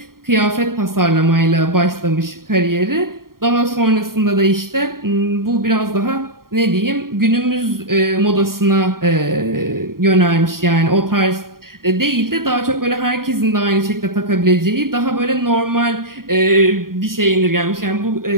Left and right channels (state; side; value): late; left; 0.92 ms